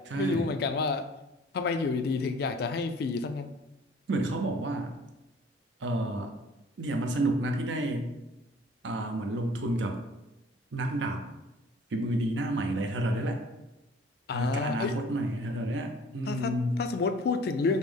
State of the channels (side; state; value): both; normal; correlation 0.51